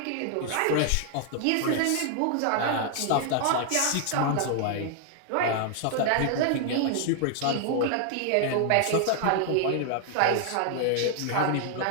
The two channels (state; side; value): different; both; correlation 0.00